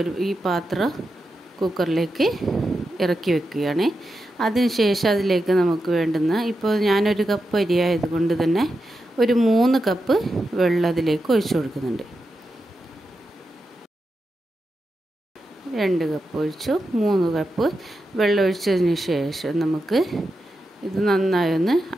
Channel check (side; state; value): both; normal; correlation 0.88